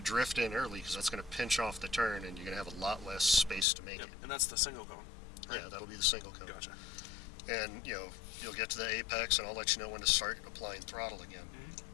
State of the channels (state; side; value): drops out; right; at 3.7 s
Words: drift in early because that's going to pinch off the turn and you're going to have a lot less space to make it. And that's the single cone, right? Yeah, that'll be the single cone. Gotcha. And, you'll get to the apex and I'll let you know when to start applying throttle again.